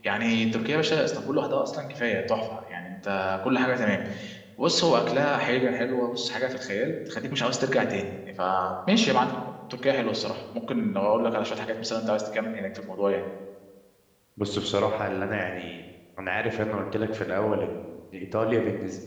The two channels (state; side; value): identical; both; correlation 1.00